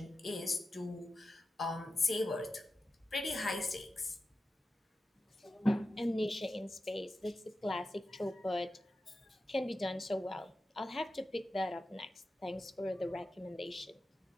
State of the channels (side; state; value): both; normal; correlation 0.92